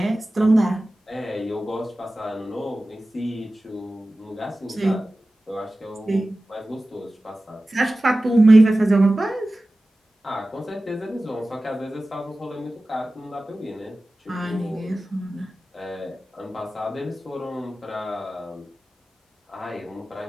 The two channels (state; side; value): normal; both; correlation 0.96